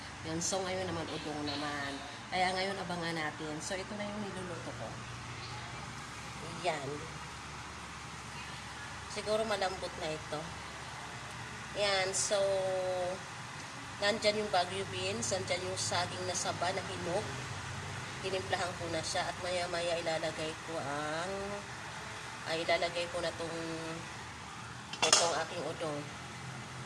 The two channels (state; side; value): identical; both; correlation 1.00